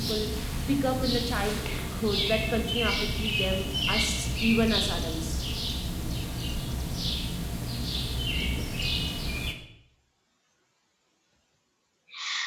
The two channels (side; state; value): both; identical; correlation 1.00